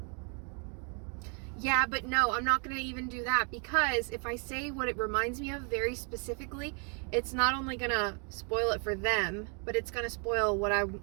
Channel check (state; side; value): quieter; left; 39.2 dB